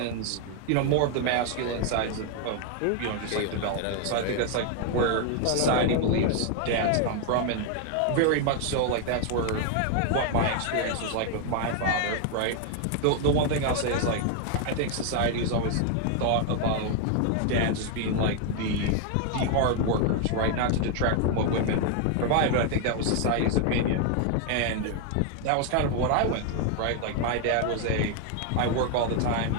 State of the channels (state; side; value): different; both; correlation 0.00